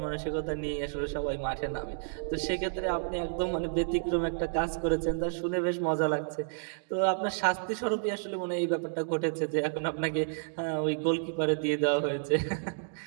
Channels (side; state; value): left; silent; digital silence